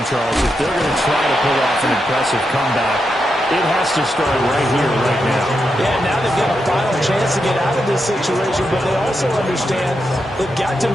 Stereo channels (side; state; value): both; normal; correlation 0.85